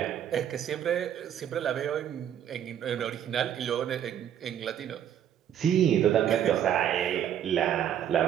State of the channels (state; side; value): quieter; left; 10.0 dB